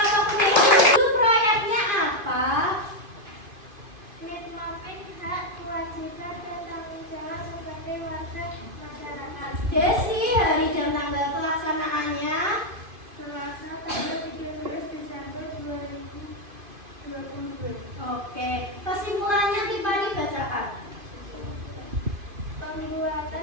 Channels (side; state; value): left; late; 2.5 ms